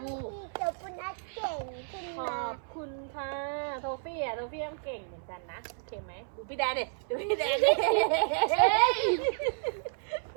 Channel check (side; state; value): left; silent; 57 dB below the other